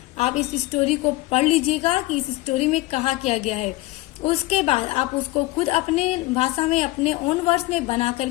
आप इस स्टोरी को पढ़ लीजिएगा कि इस स्टोरी में कहा क्या गया है, उसके बाद आप उसको खुद अपने भाषा में अपने ओन वर्ड्स में बना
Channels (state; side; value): quieter; right; 19.7 dB